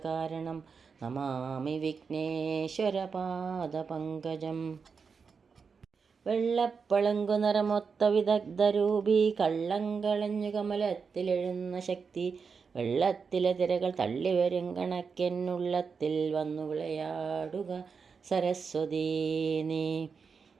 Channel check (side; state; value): left; quieter; 5.5 dB